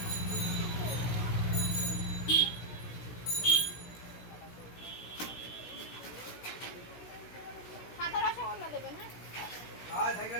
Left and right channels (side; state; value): right; late; 16 ms